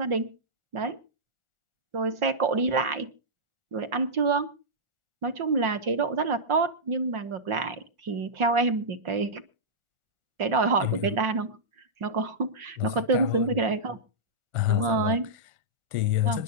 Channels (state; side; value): late; left; 1.4 ms